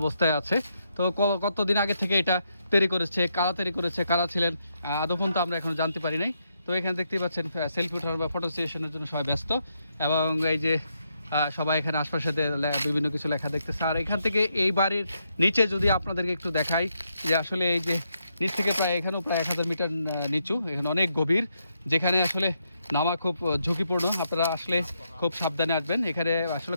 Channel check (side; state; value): both; inverted; correlation -0.80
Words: আছে। তো কতদিন আগে থেকে এটা তৈরি করেছে, কারা তৈরি করেছে, কারা ছিলেন আদৌ পর্যন্ত আমরা এখনো জানতে পারি নাই। তো এখানে দেখতেই পাচ্ছেন সেলফি উঠানোর বা ফটো সেশনের জন্য সবাই ব্যস্ত, এবং এই যে সবাই এখানে আশপাশে বিভিন্ন কিছু লেখা দেখতেছে। আর এখান থেকে এই বাড়ির নিচে যদি আপনাদেরকে একটু দেখাই, যে আসলে এই যে নিচ থেকে এখানেও প্রায় 1000 মিটার নিচু, এখানে অনেক গভীর, যেখানে আসলে নামা খুব ঝুঁকিপূর্ণ। আপনারা আসলে খুব সাবধানে আসবেন। এখানে আসলে